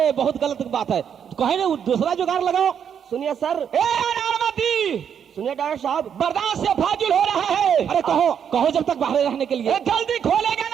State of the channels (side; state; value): left; quieter; 8.1 dB